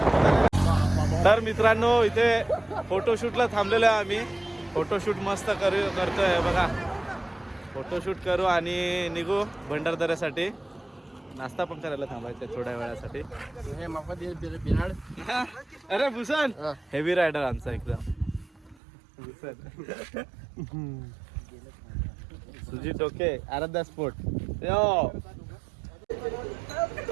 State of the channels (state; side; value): drops out; left; at 18.8 s